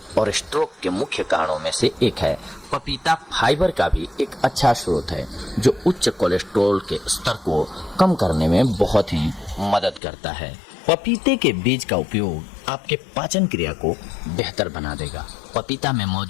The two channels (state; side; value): drops out; right; at 10.0 s